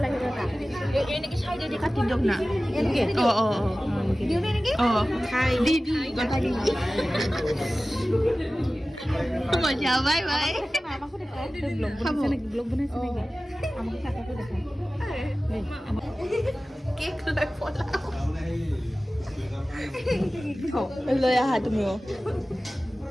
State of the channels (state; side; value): normal; both; correlation 0.96